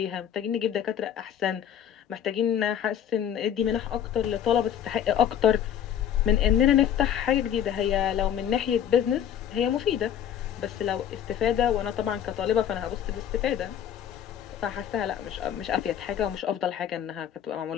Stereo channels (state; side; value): quieter; right; 9.7 dB